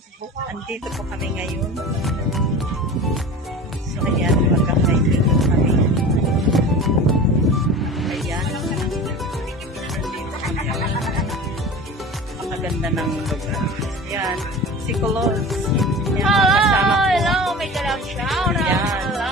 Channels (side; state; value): both; normal; correlation 0.35